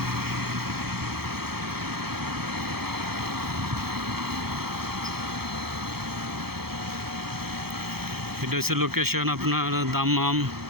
এটা হচ্ছে লোকেশন আপনার দাম্মাম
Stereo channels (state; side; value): late; left; 0.95 ms